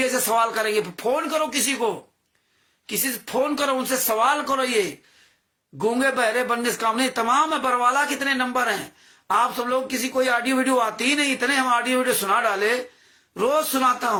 ऐसे सवाल करेंगे। फोन करो किसी को, किसी से फोन करो, उनसे सवाल करो। ये गूंगे बहरे बनने से काम नहीं, तमाम है। बरवाला कितने नंबर हैं, आप सब लोग किसी कोई ऑडियो वीडियो आती ही नहीं, इतने हम ऑडियो वीडियो सुना डाले, रोज सुनाता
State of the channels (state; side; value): identical; both; correlation 1.00